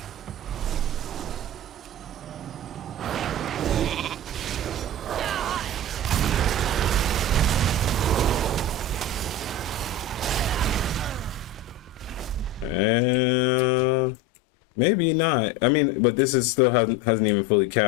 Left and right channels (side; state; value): right; drops out; at 12.9 s